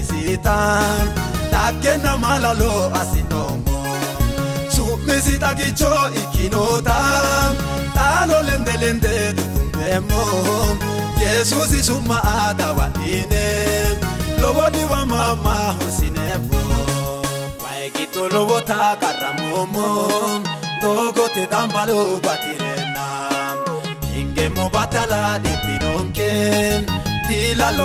takena malalo asinomo sumisita gicho ikinota talo lende tutumbemo Jesus isuma adawadine lobodi wa mama husinebo waikito lobota karamomo Doko te dambalo batirena ingemo batala dipinonken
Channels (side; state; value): both; identical; correlation 1.00